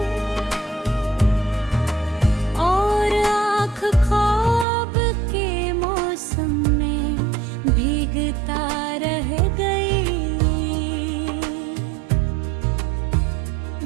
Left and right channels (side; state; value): left; drops out; at 4.7 s